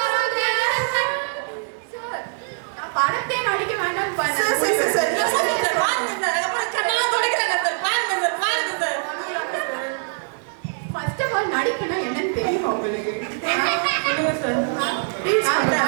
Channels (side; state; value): left; silent; digital silence